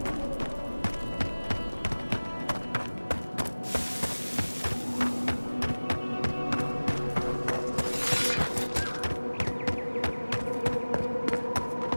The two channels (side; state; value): both; inverted; correlation -1.00